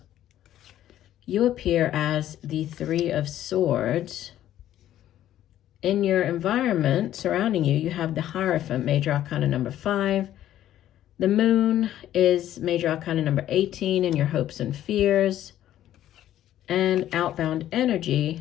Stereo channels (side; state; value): right; quieter; 12.4 dB